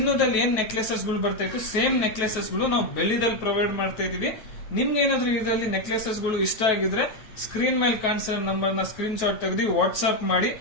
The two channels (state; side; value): late; right; 9.2 ms